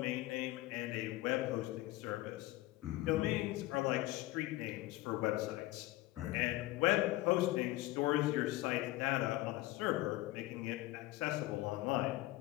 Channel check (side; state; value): right; quieter; 17.7 dB